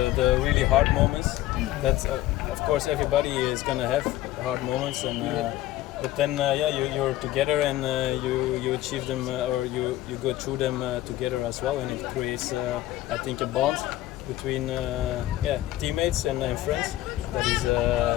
really hard moments. That's of course everybody is gonna have hard moments, and but then yeah, you're together and you achieve them or you go through them together as well, and it creates I think a bond between yeah, teammates and friends that is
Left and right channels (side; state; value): right; quieter; 15.1 dB